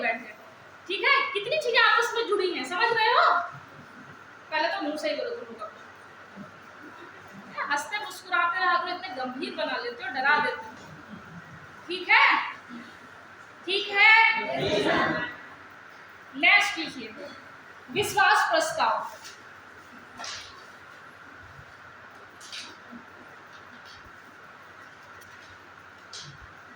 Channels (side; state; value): both; identical; correlation 1.00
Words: ठीक है, कितनी चीजें आपस में जुड़ी हैं, समझ रहे हो? पहले तो मुंह से ही बोलो तुम लोग, हंसते मुस्कुराते रहा करो, इतने गंभीर बना लेते हो, डरा देते हो। ठीक है, ठीक है। नेक्स्ट लिखिए, विश्वास प्रस्ताव।